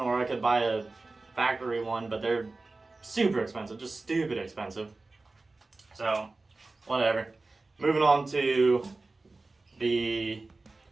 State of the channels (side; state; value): left; quieter; 3.4 dB